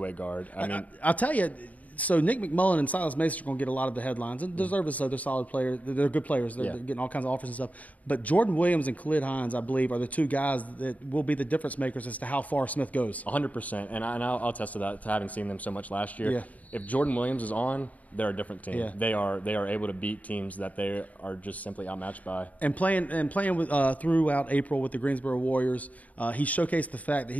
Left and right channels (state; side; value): late; right; 0.072 ms